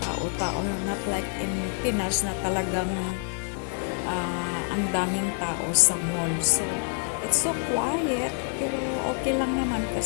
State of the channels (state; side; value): quieter; right; 36.6 dB